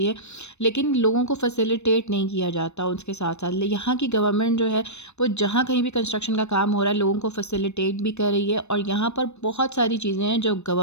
है, लेकिन लोगों को फैसिलिटेट नहीं किया जाता। उसके साथ साथ यहाँ की गवर्नमेंट जो है वो जहाँ कहीं भी कंस्ट्रक्शन का काम हो रहा है लोगों को फैसिलिटेट भी कर रही है, और यहाँ पर बहुत सारी चीज़ें हैं जो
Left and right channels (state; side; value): late; right; 0.81 ms